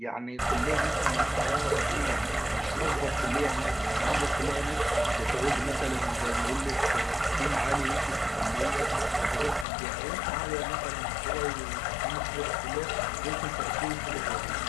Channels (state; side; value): drops out; right; at 9.7 s